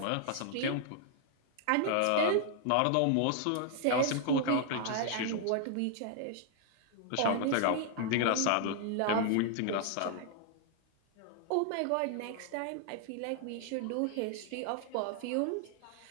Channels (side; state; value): both; different; correlation 0.00